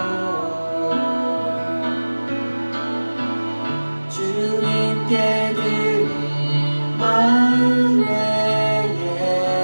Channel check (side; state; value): both; inverted; correlation -1.00